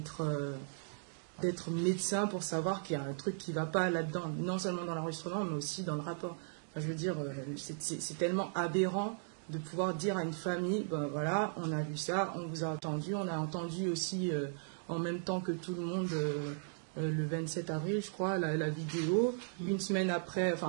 d'être médecin pour savoir qu'il y a un truc qui ne va pas là-dedans, non seulement dans l'enregistrement, mais aussi dans le rapport. Enfin, je veux dire, c'est tellement aberrant de pouvoir dire à une famille, ben voilà, on a vu ça, on vous a entendu, on a entendu aussi en même temps que tout le monde le 27 avril, je crois, la vidéo. Une semaine après,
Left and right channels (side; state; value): left; silent; digital silence